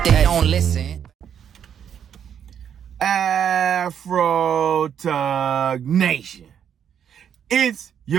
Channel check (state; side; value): quieter; left; 8.6 dB